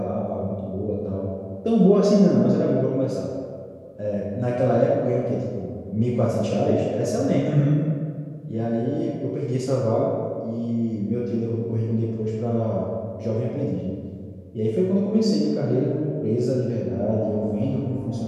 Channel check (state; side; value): identical; both; correlation 1.00